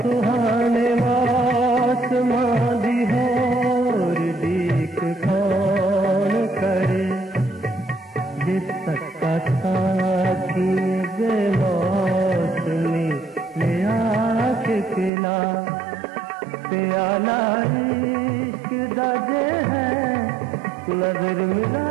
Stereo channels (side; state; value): left; drops out; at 15.1 s